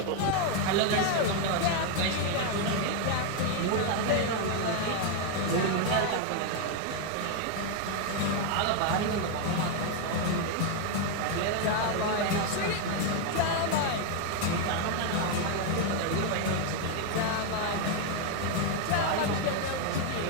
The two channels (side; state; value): both; different; correlation 0.00